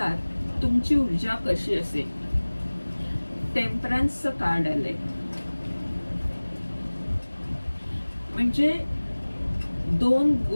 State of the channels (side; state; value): both; inverted; correlation -1.00